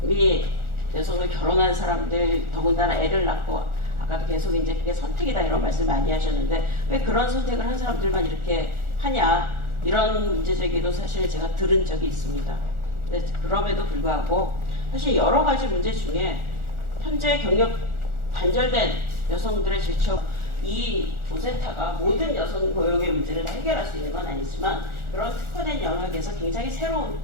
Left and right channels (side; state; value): left; late; 1.4 ms